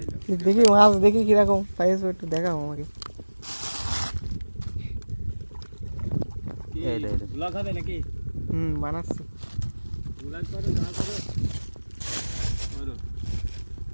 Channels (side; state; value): both; inverted; correlation -1.00